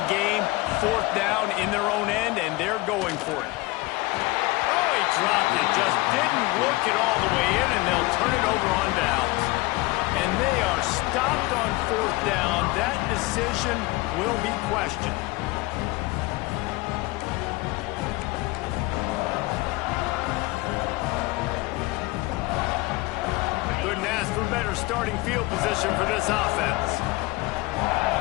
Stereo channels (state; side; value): quieter; right; 21.9 dB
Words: game, 4th down in their own end, and they're going for it. Oh, he dropped it. Just didn't look it all the way in, and they'll turn it over on downs. And they are stopped on 4th down. That decision will be questioned. Couldn't ask for better starting field position for this offense.